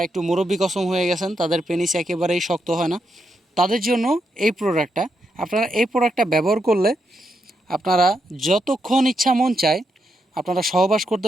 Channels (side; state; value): both; normal; correlation 0.82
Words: একটু মুরব্বি কসম হয়ে গেছেন, তাদের পেনিস একেবারেই শক্ত হয় না, তাদের জন্য এই প্রোডাক্টটা। আপনারা এই প্রোডাক্টটা ব্যবহার করলে আপনারা যতক্ষণ ইচ্ছা মন চায় আপনারা সহবাস করতে